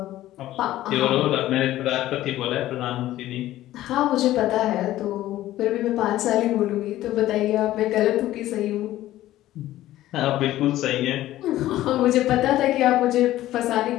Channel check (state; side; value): quieter; right; 14.6 dB